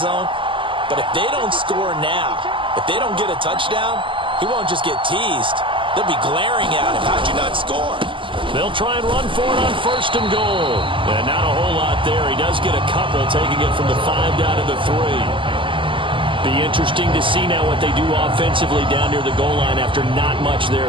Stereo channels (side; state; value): left; late; 0.25 ms